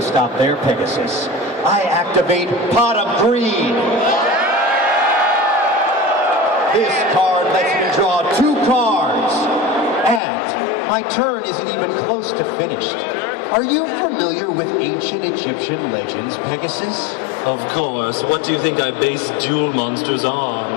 stop there, Pegasus. I activate Pot of Greed. This card lets me draw 2 cards. And my turn isn't even close to finished. Are you familiar with ancient Egyptian legends, Pegasus? Of course. What do you think I base duel monsters on?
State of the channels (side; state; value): right; drops out; at 10.2 s